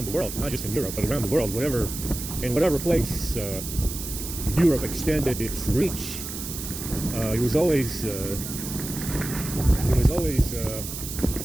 the world, not just in Europe, but around the world, in whatever place Europe extended its reach, it was always the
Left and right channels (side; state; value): right; noise; hiss, 8 dB below the sound